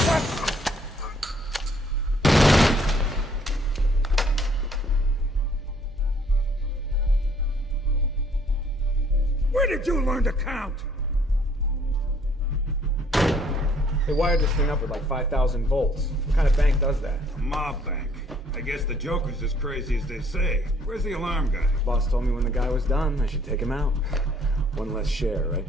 Where did you learn to count? They wired this thing up with like 5,000 volts. What kind of bank does that? A mob bank. I guess the Joker's as crazy as they say. Where's the alarm guy? Boss told me when the guy was done, I should take him out. One less share, right?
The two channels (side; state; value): right; noise; hum, 18 dB below the sound